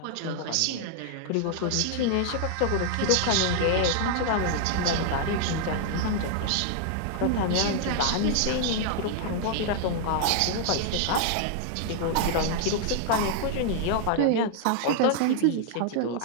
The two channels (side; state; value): both; different; correlation 0.00